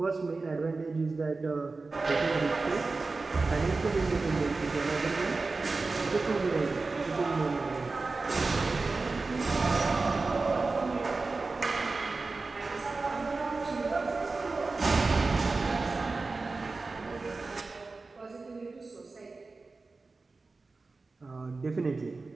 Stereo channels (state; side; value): quieter; left; 3.8 dB